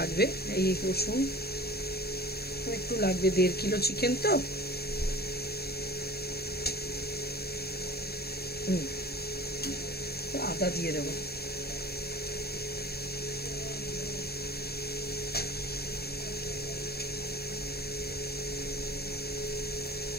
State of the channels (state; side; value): late; right; 0.46 ms